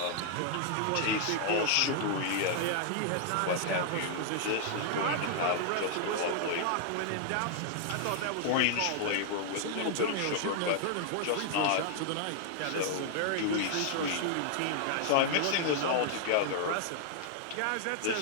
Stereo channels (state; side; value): different; both; correlation -0.01